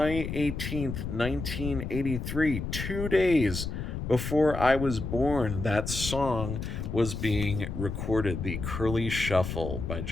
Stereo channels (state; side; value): noise; left; rumble, 5 dB below the sound